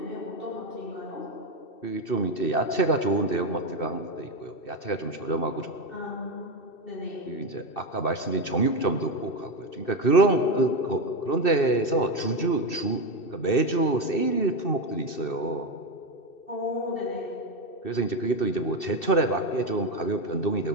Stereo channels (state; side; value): late; right; 2.6 ms